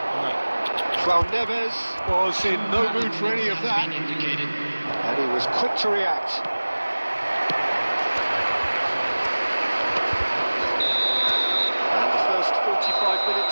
João Neves was in no mood for any of that. And he was quick to react. And the first 45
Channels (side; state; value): both; inverted; correlation -1.00